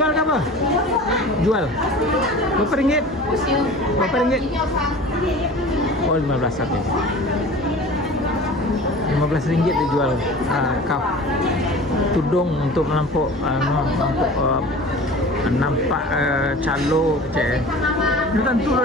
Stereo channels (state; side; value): normal; both; correlation 0.40